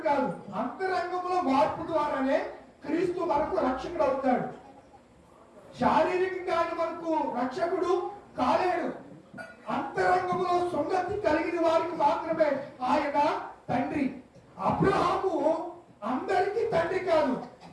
కాదు. అంతరంగంలో మార్పు ద్వారానే క్రీస్తు మనకు రక్షకుడు అవుతాడు. శారీరకంగా మనకు రక్షకుడు కాలేడు. అంతరంగంలో సున్నతి కలిగిన వారికి మాత్రమే ఆయన తండ్రి. అబ్రహాము అందరికీ తండ్రి కాదు,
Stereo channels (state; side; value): identical; both; correlation 1.00